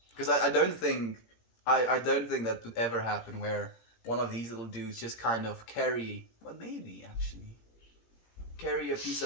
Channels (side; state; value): right; late; 17 ms